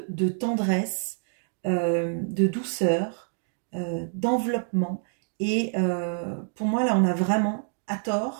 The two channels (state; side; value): silent; left; 60 dB below the other